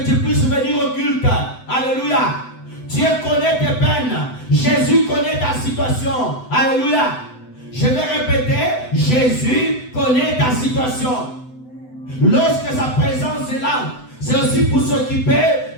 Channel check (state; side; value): late; right; 7.9 ms